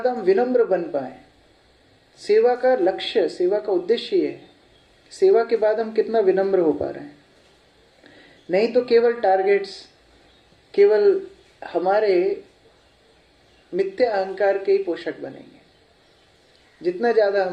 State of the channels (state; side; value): identical; both; correlation 1.00